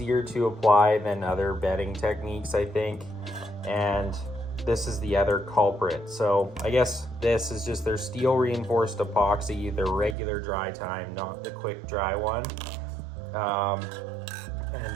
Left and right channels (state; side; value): drops out; left; at 10.2 s